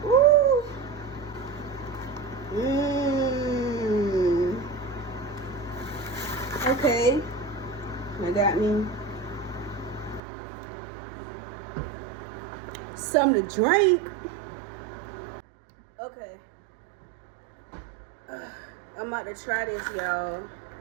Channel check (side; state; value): left; drops out; at 10.2 s